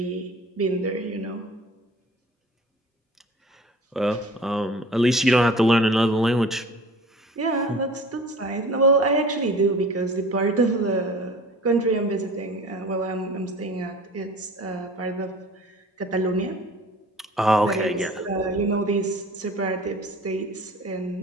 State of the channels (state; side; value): normal; both; correlation 0.44